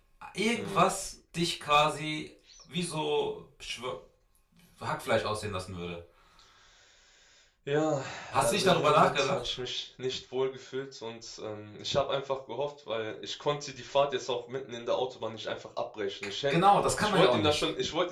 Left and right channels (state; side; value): identical; both; correlation 1.00